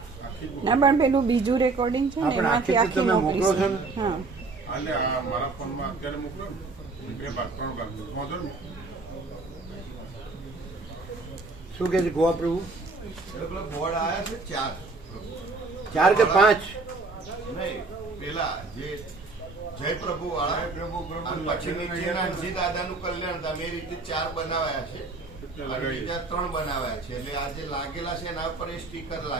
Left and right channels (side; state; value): left; quieter; 3.8 dB